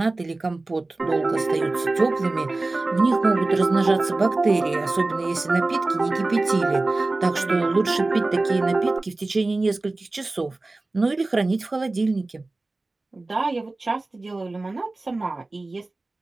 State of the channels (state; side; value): quieter; left; 3.1 dB